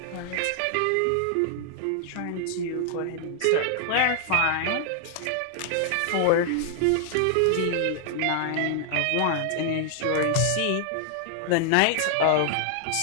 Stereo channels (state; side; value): different; both; correlation 0.00